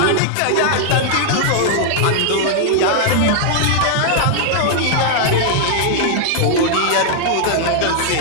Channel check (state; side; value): different; both; correlation -0.01